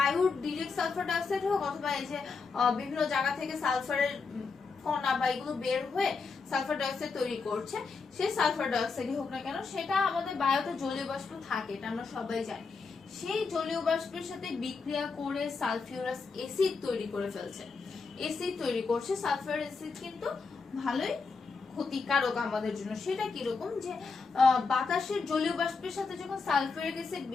ডিরেক্ট সালফার ডাইঅক্সাইড হোক, অথবা এই যে বিভিন্ন জায়গা থেকে সালফারের কণা বা এগুলো বের হয়ে সালফার ডাইঅক্সাইড তৈরি করছে, সেই সালফার ডাইঅক্সাইডই হোক না কেন, সেটা আমাদের বায়ুতে জলীয় বাষ্প থাকে, এটা আমরা সবাই জানি। সেই জলীয় বাষ্পের সাথে বিক্রিয়া করে সালফিউরাস অ্যাসিড তৈরি করে ফেলছে, অ্যাসিড তৈরি করছে। সালফার অ্যাসিড কিন্তু ভালোই ক্ষতিকারক আমাদের জন্য। সেটা কিরকম? যে বাতাসের জলীয় বাষ্পের সাথে যখন সালফিউরিক অ্যাসিড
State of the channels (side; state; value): right; quieter; 4.7 dB